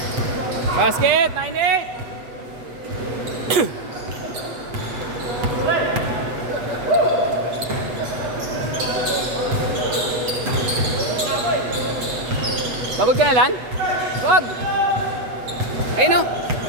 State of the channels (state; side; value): late; left; 8.1 ms